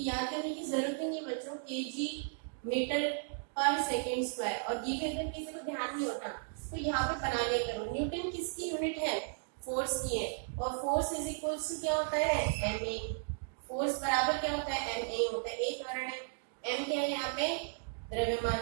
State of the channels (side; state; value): left; silent; digital silence